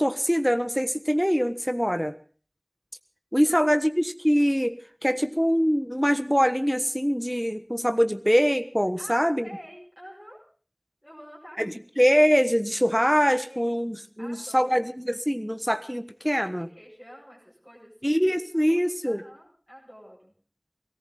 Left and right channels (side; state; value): both; identical; correlation 1.00